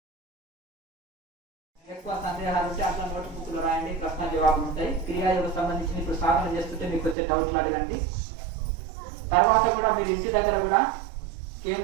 సందేహాలు ఉంటే అట్లా నోట్ బుక్ లో రాయండి, ప్రశ్న జవాబులు ఉంటాయి. క్రియాయోగం సంబంధించి ఇప్పుడు సాధన చేస్తుంటే మీకు వచ్చే డౌట్లు అడగండి. తర్వాత కూడా మీరు ఇంటి దగ్గర కూడా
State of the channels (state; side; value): drops out; left; at 7.2 s